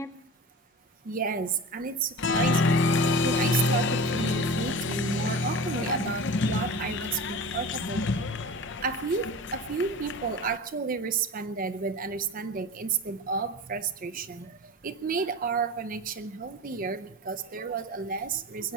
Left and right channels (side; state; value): both; normal; correlation 0.33